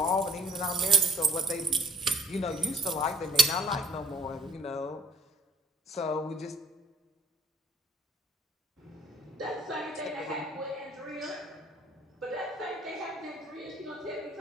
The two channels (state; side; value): normal; both; correlation 0.57